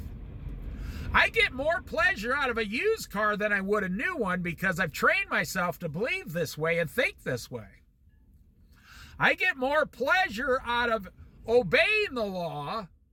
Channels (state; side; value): identical; both; correlation 1.00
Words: I get more pleasure out of a used car than I would a new one because I've trained myself to believe this way and think this way. I get more pleasure out of obeying the law